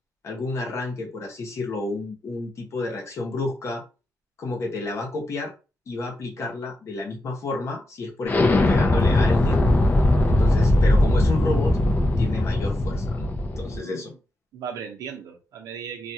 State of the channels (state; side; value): normal; both; correlation 0.88